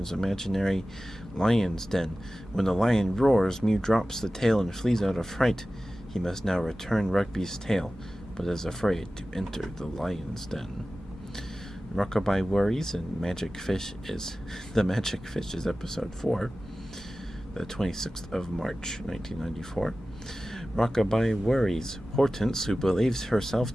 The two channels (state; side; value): normal; both; correlation 0.96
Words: imaginary lion's den. When the lion roars, Mew drops the tail and flees out of fright. He must now return Rugby's tail, but is afraid to enter the lion's den. Rockabye Worries and Magic Fish is episode 4, the 26th of March, 1994. Rockabye Worries. Hortense, who believes herself